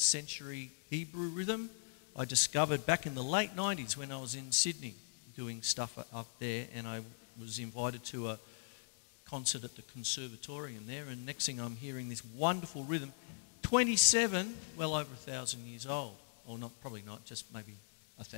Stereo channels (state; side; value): silent; right; digital silence